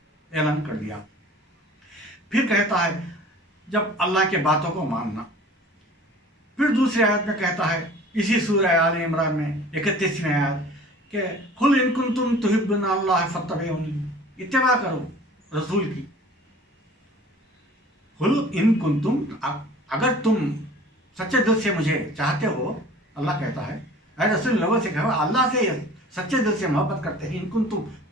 ऐलान कर दिया। फिर कहता है जब अल्लाह के बातों को मानना, फिर दूसरी आयत में कहता है इसी सूरह आले इमरान में 31वें आयत कि कुल इन कुंतुम तुहिब्बुना अल्लाह फत्तबिऊनी, इत्तिबा करो रसूल की। कुल इन कुंतुम, अगर तुम सच्चे दिल से मुझे चाहते हो, अल्लाह कहता है ऐ रसूल लोगों से कहो अल्लाह से सच्चे दिल से मोहब्बत करते हैं, इन कुंतुम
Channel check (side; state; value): both; normal; correlation 0.45